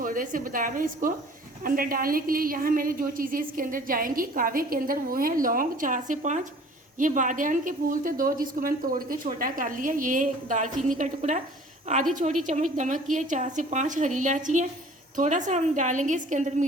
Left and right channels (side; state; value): both; normal; correlation 0.50